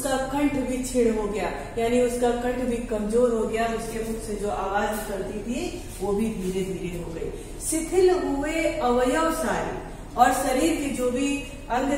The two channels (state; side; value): identical; both; correlation 1.00